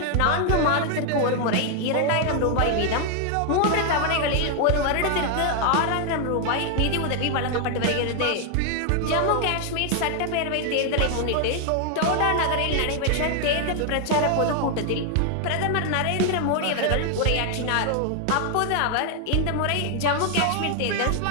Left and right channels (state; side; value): different; both; correlation 0.00